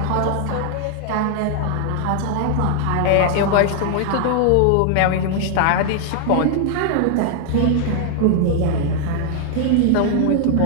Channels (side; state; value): both; different; correlation 0.00